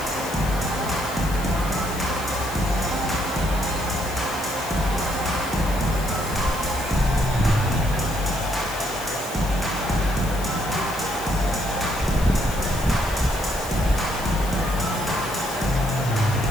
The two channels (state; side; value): noise; left; hiss, 13 dB below the sound